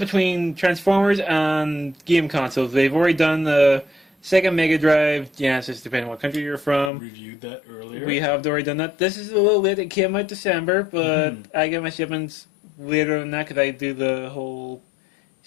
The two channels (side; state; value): right; drops out; at 6.9 s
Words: Transformers and game consoles. They've already done the Sega Mega Drive, Genesis, depending on what country you're from. Reviewed that earlier. We have already done that. This is a little late. It came out December, but I get my shipments later than that because I do the whole